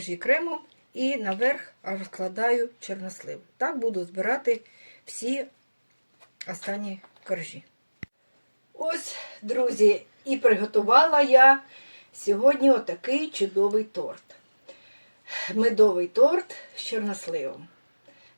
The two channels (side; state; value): both; inverted; correlation -1.00